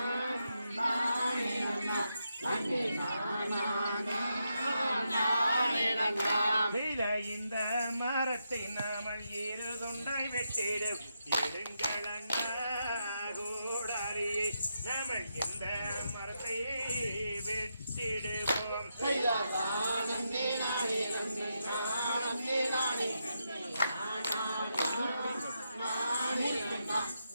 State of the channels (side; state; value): both; inverted; correlation -0.83